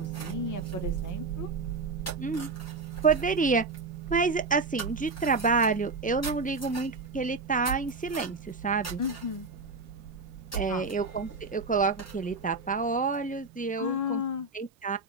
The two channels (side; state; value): left; quieter; 3.8 dB